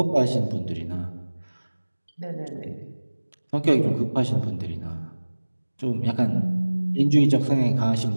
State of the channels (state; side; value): inverted; both; correlation -1.00